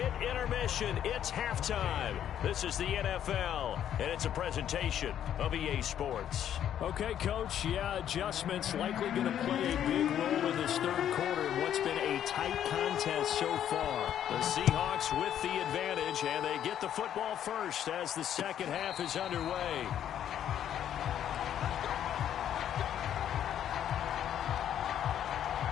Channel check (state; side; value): quieter; right; 10.2 dB